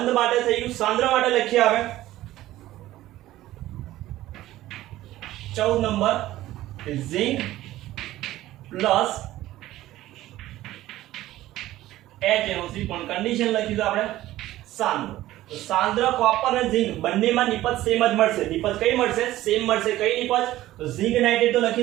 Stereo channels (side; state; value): left; quieter; 15.3 dB